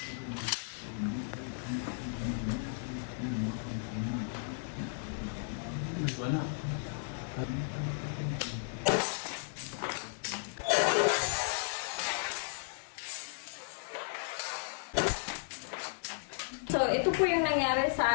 So, ito po yung nangyari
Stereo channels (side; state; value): right; silent; digital silence